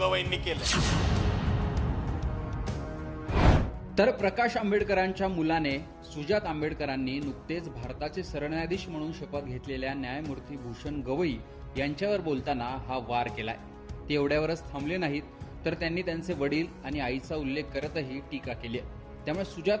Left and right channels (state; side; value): identical; both; correlation 1.00